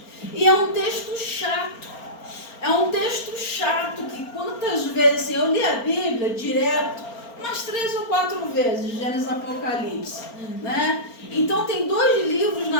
e é um texto chato. É um texto chato que quantas vezes eu li a Bíblia direto, umas 3 ou 4 vezes, Gênesis e Apocalipse, né? Então tem 2 livros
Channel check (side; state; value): right; late; 4.4 ms